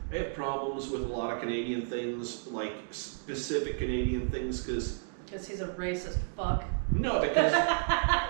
I have problems with a lot of Canadian things, like specific Canadian things, because he's a racist fuck. No, because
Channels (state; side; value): silent; left; digital silence